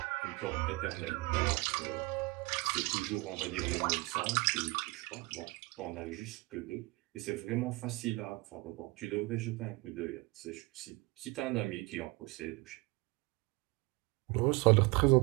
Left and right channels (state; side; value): quieter; left; 24.1 dB